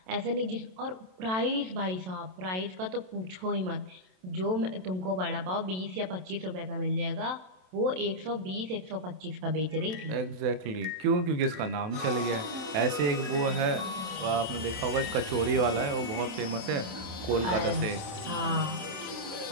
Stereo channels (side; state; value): left; late; 27 ms